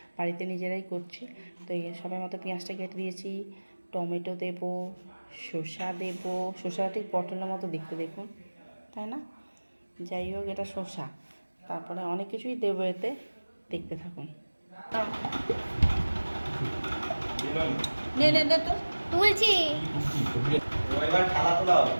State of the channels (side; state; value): both; inverted; correlation -1.00